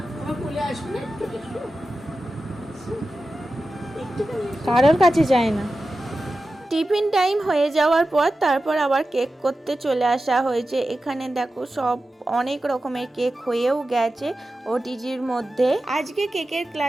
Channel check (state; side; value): normal; both; correlation 0.93